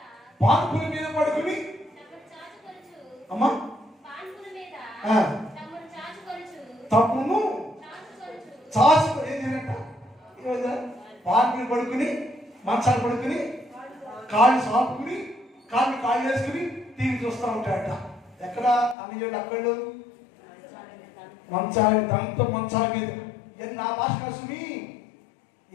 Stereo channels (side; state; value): right; drops out; at 18.9 s